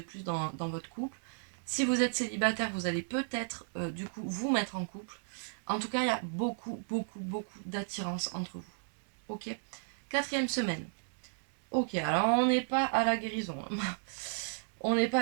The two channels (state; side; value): silent; left; digital silence